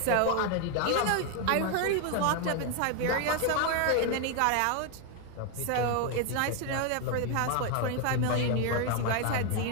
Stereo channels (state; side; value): different; both; correlation 0.01